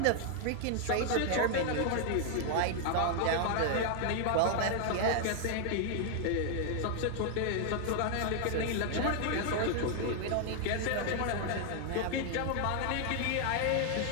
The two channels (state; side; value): different; both; correlation 0.00